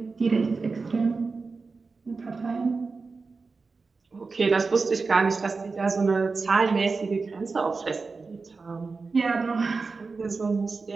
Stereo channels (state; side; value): quieter; left; 4.3 dB